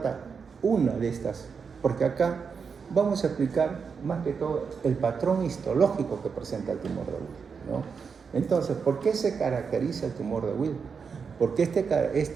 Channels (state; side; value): quieter; left; 5.8 dB